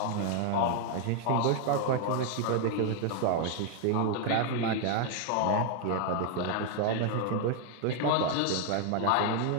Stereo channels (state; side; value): different; both; correlation 0.00